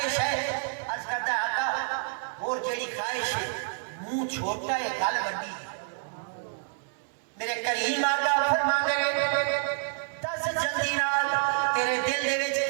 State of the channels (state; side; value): silent; left; digital silence